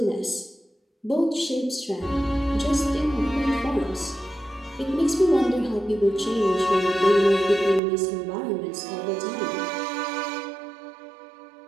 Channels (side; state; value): left; drops out; at 7.8 s